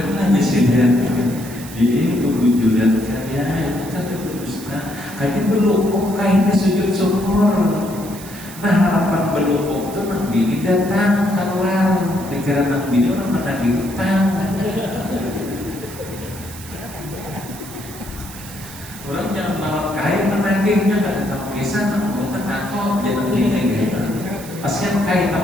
aja sih dia. Jadi bujuran kaya kata berdusta kayaknya belum kayaknya sujud syukur. Nah harapan belum itu Nang Bini datang keluar dikira Nang Bini orang menagih utang. Orang jangan bawa kain menagihnya nggak ada tahu kisah Nang utang aku jangan Bini gitu. Pasien kain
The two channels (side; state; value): right; noise; hiss, 15 dB below the sound